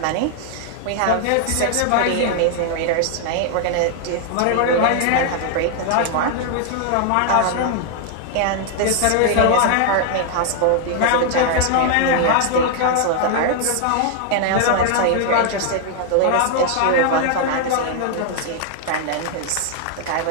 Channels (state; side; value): different; both; correlation 0.00